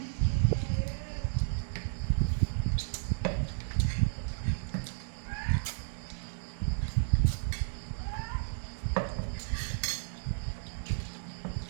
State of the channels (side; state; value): left; silent; digital silence